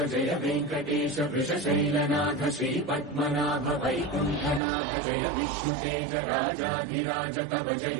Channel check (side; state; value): left; drops out; at 4.6 s